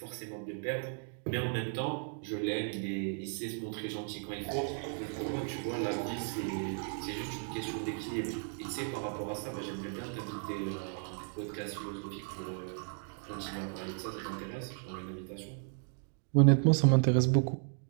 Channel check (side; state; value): left; silent; 54 dB below the other